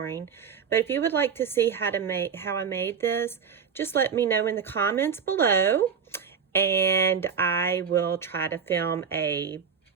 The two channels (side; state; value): left; quieter; 6.7 dB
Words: But if you would like to see how I made this, just let me know in the comments below, and I will try to film a